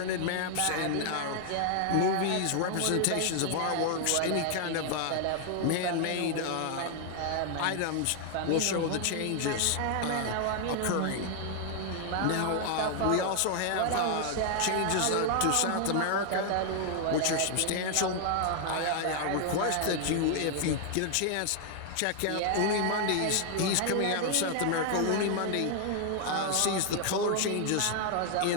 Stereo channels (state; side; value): different; both; correlation 0.00